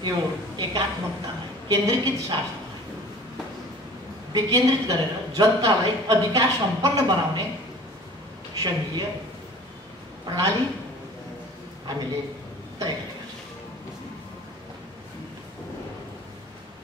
यो एकात्मकतालाई, केन्द्रीकृत शासनलाई विकेन्द्रित गरेर जनतालाई अधिकार सम्पन्न बनाउने सङ्घीय प्रणाली हामीले तय गरेका छौँ।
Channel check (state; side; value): normal; both; correlation 0.45